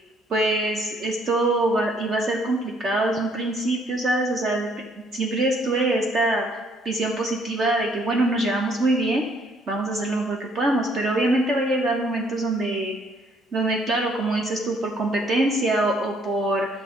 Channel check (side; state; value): both; normal; correlation 0.65